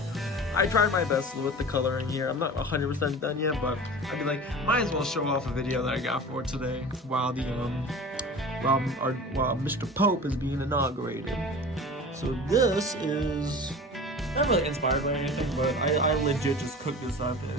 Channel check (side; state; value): both; normal; correlation 0.36